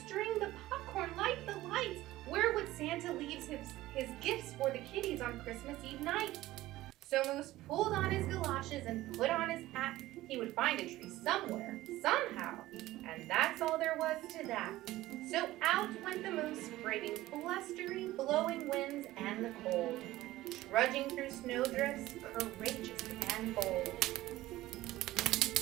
the popcorn, light the lights? Where would Santa leave his gifts for the kiddies on Christmas Eve night? So Moose pulled on his galoshes and put on his hat. He would find a tree somewhere, somehow, and that's all there was to that. So out went the Moose, braving blustery, blowing winds and the cold, trudging through snowdrifts, courageous and bold.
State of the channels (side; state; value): left; quieter; 16.5 dB